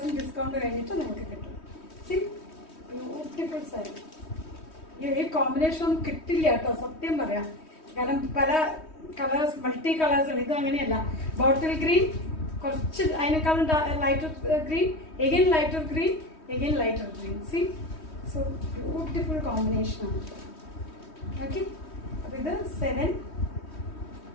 ഡിസ്കൗണ്ട് കഴിഞ്ഞിട്ട് നിങ്ങൾക്ക് കിട്ടും. C beautiful sari. ഈ കോമ്പിനേഷൻ ഒന്നും കിട്ടില്ല കേട്ടോ, സത്യം പറയാം. കാരണം പല കളേഴ്സ്, മൾട്ടി കളേഴ്സ് ആണ്. ഇത് അങ്ങനെയല്ല, ബോട്ടിൽ ഗ്രീൻ, കുറച്ച് അതിനേക്കാളും lighter green, again lighter green, again lighter green. C so beautiful combination ആണ്. ഓക്കെ, അപ്പോൾ ഇത്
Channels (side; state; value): right; late; 3.2 ms